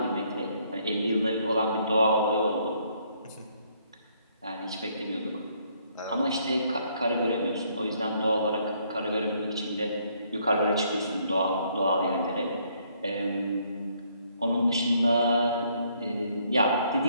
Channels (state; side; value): inverted; both; correlation -0.68